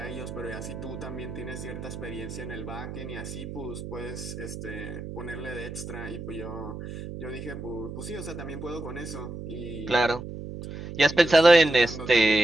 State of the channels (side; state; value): right; noise; hum, 9 dB below the sound